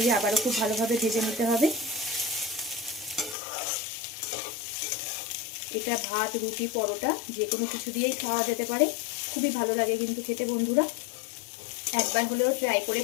আবারও খুব ভালোভাবে ভেজে নিতে হবে। এটা ভাত, রুটি, পরোটা যে কোনো কিছু দিয়েই খাওয়া যেতে পারে, খুবই ভালো লাগে কিন্তু খেতে। বন্ধুরা একবার হলেও ট্রাই করে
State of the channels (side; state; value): right; drops out; at 3.4 s